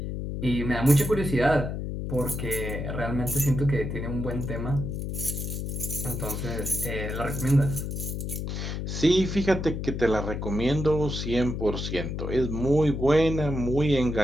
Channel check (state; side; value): noise; left; hum, 4 dB below the sound